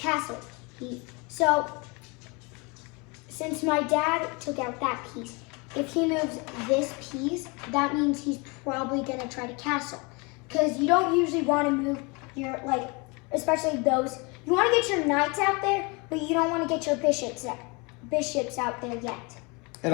So since my dad took out that piece, if he moves this piece, that means he's probably gonna try to castle. Because you don't usually want to move your, like, especially those, you want to get your knights out there, but you don't want to get your bishops out there yet. It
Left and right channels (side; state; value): right; quieter; 29.0 dB